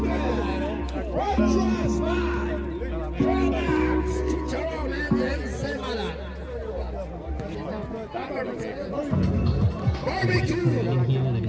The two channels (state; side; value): identical; both; correlation 1.00